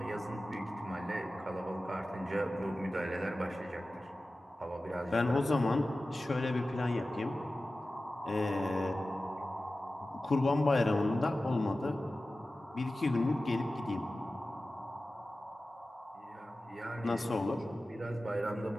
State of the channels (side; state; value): both; normal; correlation 0.95